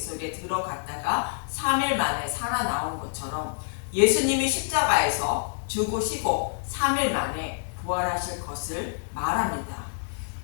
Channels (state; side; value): silent; right; digital silence